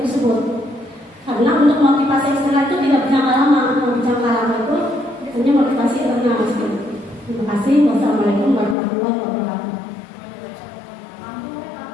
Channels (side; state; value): right; drops out; at 8.8 s